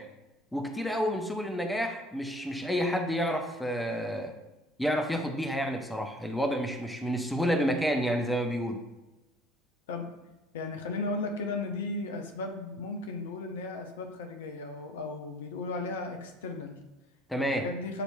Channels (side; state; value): both; normal; correlation 0.56